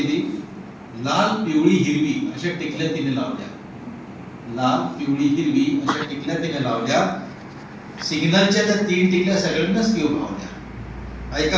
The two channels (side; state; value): both; identical; correlation 1.00